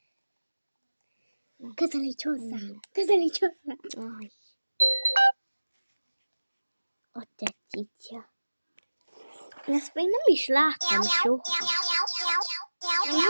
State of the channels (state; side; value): inverted; both; correlation -1.00